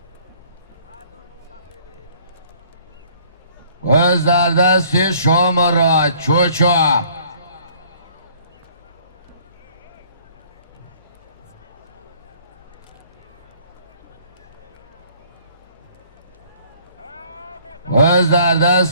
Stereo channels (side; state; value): both; inverted; correlation -0.57